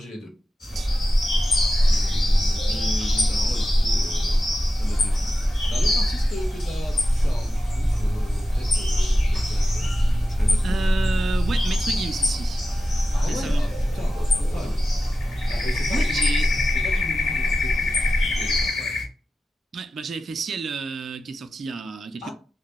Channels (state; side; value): normal; both; correlation 0.92